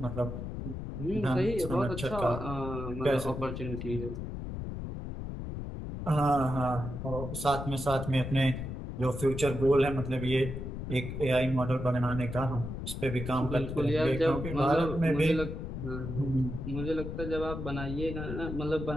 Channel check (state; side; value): noise; left; rumble, 6 dB below the sound